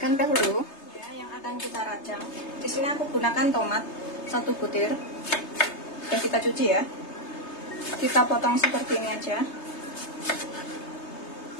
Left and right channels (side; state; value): right; late; 3.3 ms